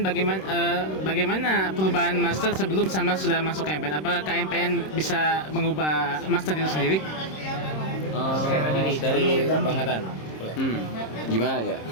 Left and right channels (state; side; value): late; right; 26 ms